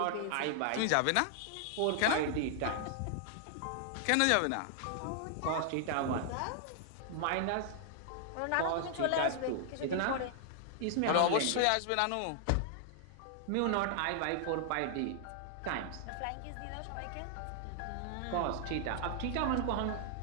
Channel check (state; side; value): different; both; correlation 0.00